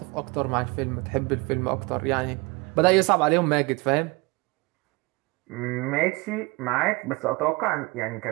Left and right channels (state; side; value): quieter; left; 25.8 dB